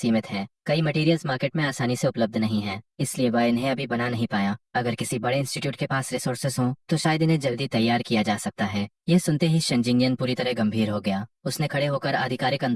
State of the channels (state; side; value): identical; both; correlation 1.00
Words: हैं। कई मटेरियल्स मार्केट में आसानी से उपलब्ध नहीं है, इसलिए वह इन्हें अभी बना नहीं पाया। अगर किसी बड़े इंस्टीट्यूट के पास रिसोर्सेस हों तो शायद इन्हें जल्दी तैयार किया जा सकता है। यह सुनते ही शेन जिंगयान पूरी तरह गंभीर हो गया। उसने खड़े होकर आधिकारिक